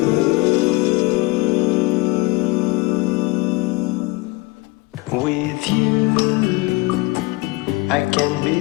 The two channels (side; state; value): right; quieter; 22.8 dB